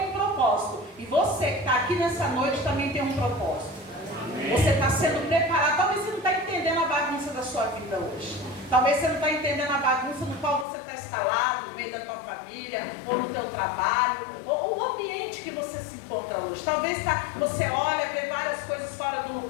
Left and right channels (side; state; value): right; drops out; at 10.7 s